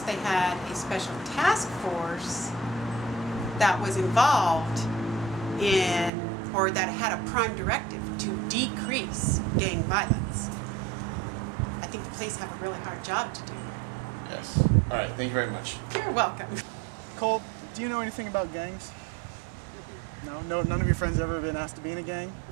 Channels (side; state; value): left; drops out; at 6.1 s